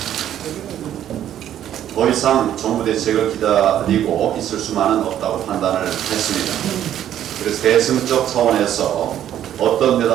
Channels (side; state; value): left; quieter; 11.0 dB